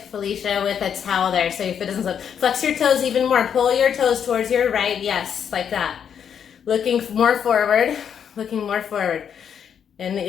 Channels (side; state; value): right; quieter; 8.0 dB